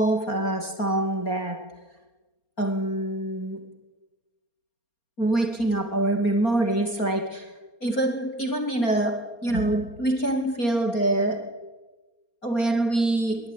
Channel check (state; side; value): late; right; 4.3 ms